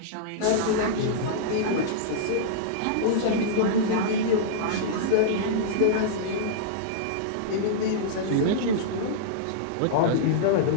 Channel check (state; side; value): different; both; correlation -0.02